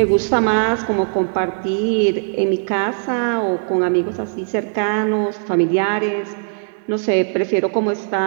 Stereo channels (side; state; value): left; silent; digital silence